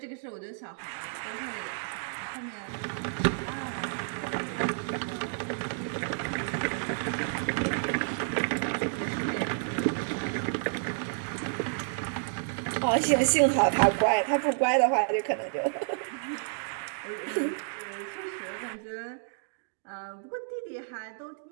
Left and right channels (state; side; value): silent; left; digital silence